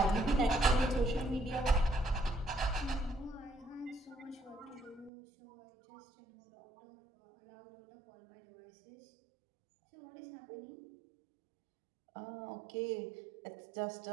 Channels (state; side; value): drops out; left; at 5.1 s